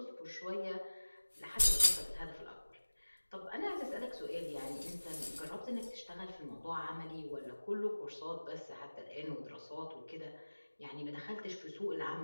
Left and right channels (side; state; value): both; inverted; correlation -1.00